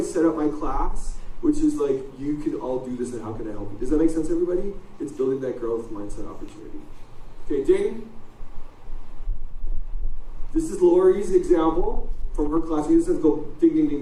up my class, which is like, you can all do this and how can I help you? Does that make sense, everybody? It's building that growth mindset opportunity. Okay, ding. This is Lori's example from her class. You just have to go ding, ding, ding,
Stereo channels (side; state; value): both; identical; correlation 1.00